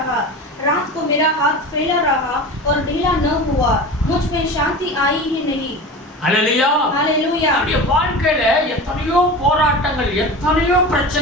रात को मेरा हाथ फैला रहा और ढीला न हुआ, मुझ में शांति आई ही नहीं। ஹல்லேலூயா. हालेलुया। அவருடைய வாழ்க்கையில எத்தனையோ போராட்டங்கள், எத்தனையோ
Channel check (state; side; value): normal; both; correlation 0.31